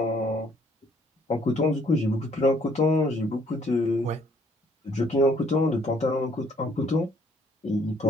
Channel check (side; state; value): both; normal; correlation 0.64